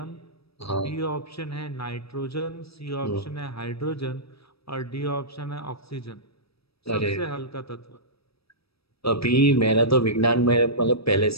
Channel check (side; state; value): right; late; 0.77 ms